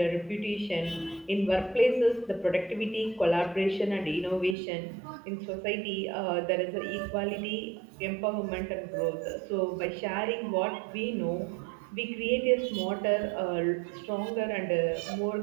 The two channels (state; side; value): drops out; left; at 4.5 s